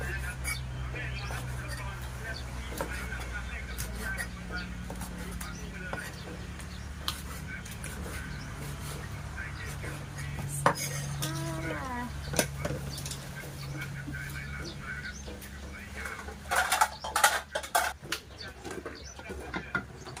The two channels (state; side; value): identical; both; correlation 1.00